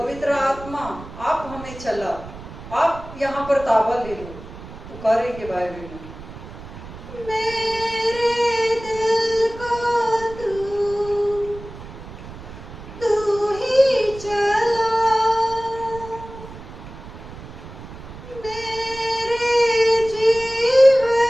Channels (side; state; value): right; noise; rumble, 14 dB below the sound